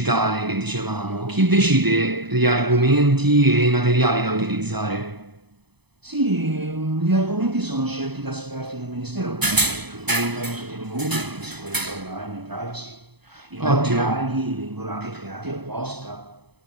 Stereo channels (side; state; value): left; late; 0.98 ms